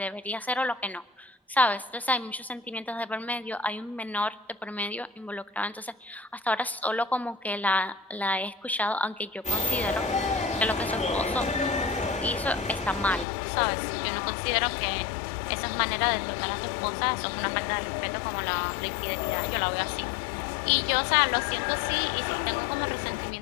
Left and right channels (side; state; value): right; drops out; at 13.2 s